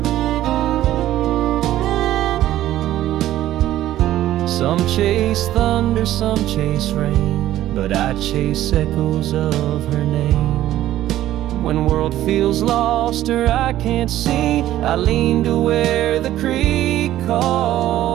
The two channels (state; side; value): quieter; left; 13.6 dB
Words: Some chase thunder, some chase rain, but I chase echoes of her name. When world feels lost or I can't see, I lean to where the creek